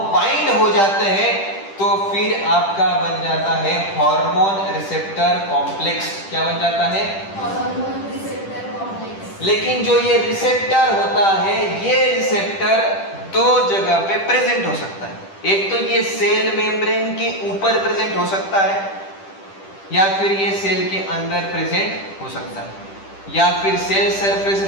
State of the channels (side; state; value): right; late; 10 ms